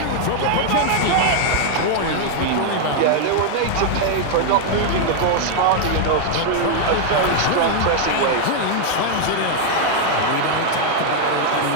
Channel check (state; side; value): different; both; correlation 0.00